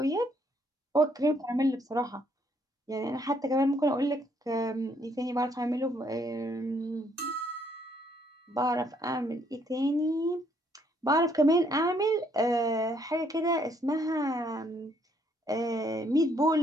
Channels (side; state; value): both; normal; correlation 0.69